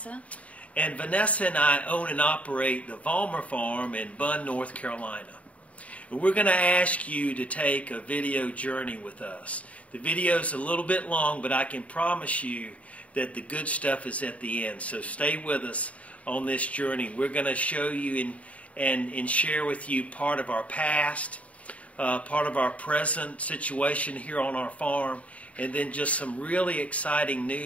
And Vanessa and I own and operate the Vollmer farm in Bunn, North Carolina. And we're going to ask you to take a video journey with us. The video is a little bit long, but I can promise you that the good stuff is at the end. So stay with us on this journey. We're going to show you and share with you part of our past, part of our present situation here on our farm, and then just some really exciting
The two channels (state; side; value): late; right; 0.066 ms